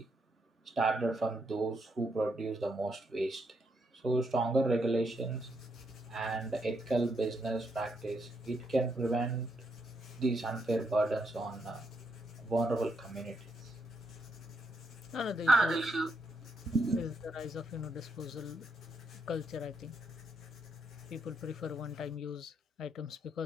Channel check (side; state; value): both; normal; correlation 0.78